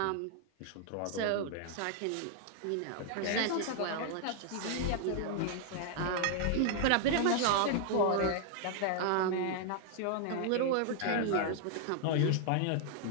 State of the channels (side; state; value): both; different; correlation 0.00